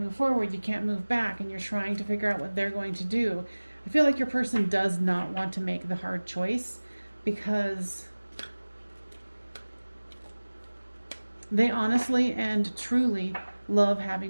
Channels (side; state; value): both; inverted; correlation -1.00